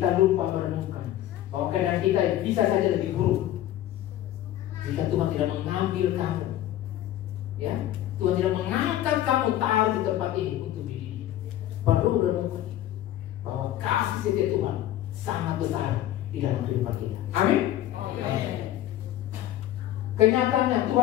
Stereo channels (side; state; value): right; quieter; 13.1 dB